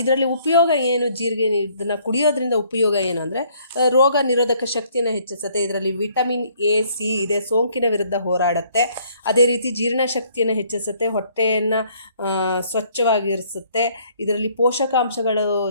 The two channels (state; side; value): inverted; both; correlation -0.63